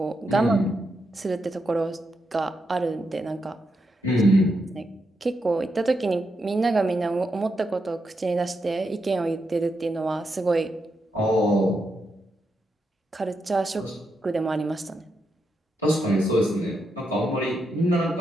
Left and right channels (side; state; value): both; normal; correlation 0.83